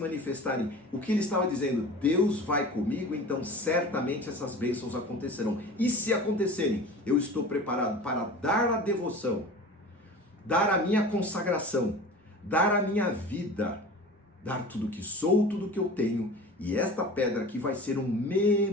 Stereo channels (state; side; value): normal; both; correlation 0.37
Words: o que ele estava dizendo, Deus vai comigo, então certamente essas bênçãos acontecerão. E se acontecerem, eu estou preparado para dar a devoção, dar a minha consagração, dar a minha vida, dar tudo que sou, tudo que eu tenho. E esta pedra aqui vai ser um